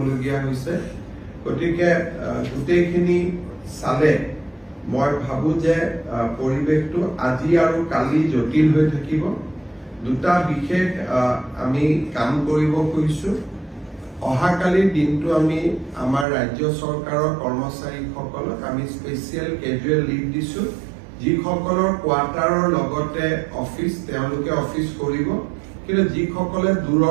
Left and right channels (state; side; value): drops out; left; at 16.2 s